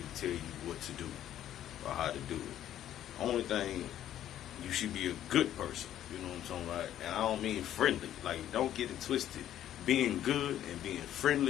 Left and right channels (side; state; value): right; quieter; 11.6 dB